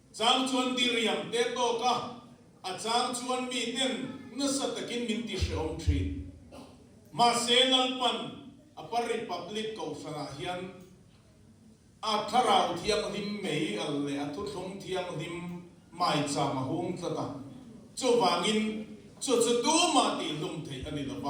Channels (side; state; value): both; identical; correlation 1.00